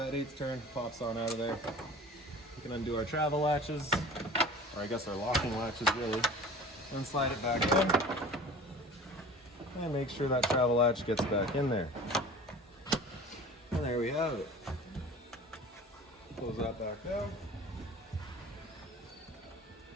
8th turn, pops on out of there. We can undo our travel latches, or I guess our locking latches really, and slide it back in. And make sure that travel latch gets back in there. And there we have it. Close that back down.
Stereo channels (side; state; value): both; normal; correlation 0.41